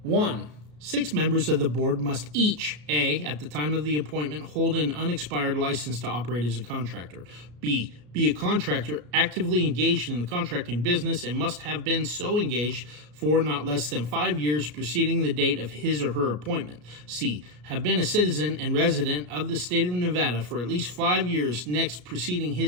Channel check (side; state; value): left; late; 34 ms